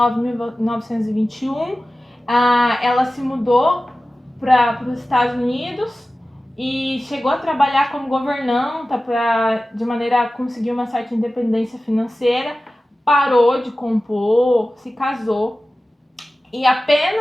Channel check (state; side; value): normal; both; correlation 0.96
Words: e 1921, ela se mudou para os Estados Unidos e chegou a trabalhar como governanta de maneira a conseguir uma certa independência financeira, parou de compor, se casou. E